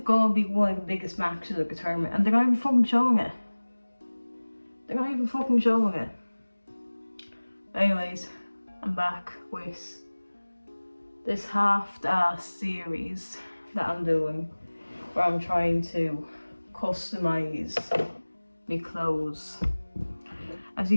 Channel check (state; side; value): inverted; both; correlation -1.00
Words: be one of the biggest matches of the tournament, and they're not even fucking showing it. Anyways, I'm back with this half-assed series that I'm doing, where I'm trying to customise my clothes. As you